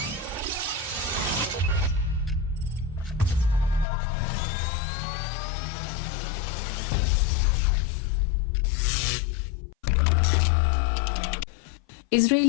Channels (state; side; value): drops out; right; at 3.9 s